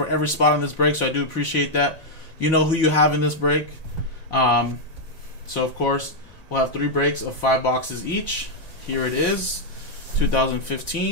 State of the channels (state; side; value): late; right; 1.8 ms